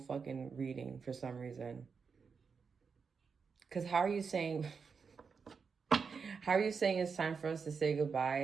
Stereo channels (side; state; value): left; quieter; 5.6 dB